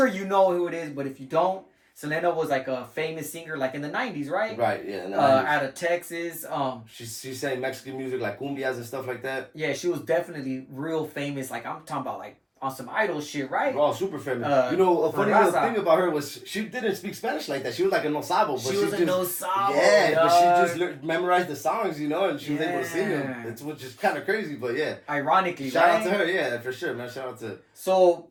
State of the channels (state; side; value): identical; both; correlation 1.00